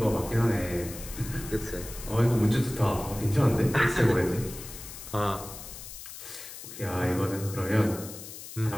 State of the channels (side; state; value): left; noise; hiss, 12 dB below the sound